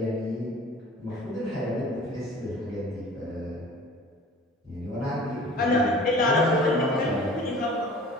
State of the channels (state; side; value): normal; both; correlation 0.44